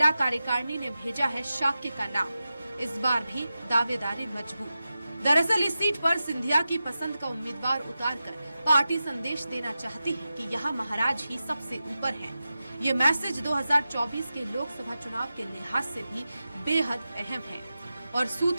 कार्यकारिणी ने भेजा है शाक्य का नाम। इस बार भी दावेदारी मजबूत। दरअसल इस सीट पर सिंधिया की पसंद का उम्मीदवार उतारकर पार्टी संदेश देना चाहती है कि यहाँ महाराज ही सबसे ऊपर हैं। ये मैसेज 2024 के लोकसभा चुनाव के लिहाज से भी बेहद अहम है। और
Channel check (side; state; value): both; inverted; correlation -0.93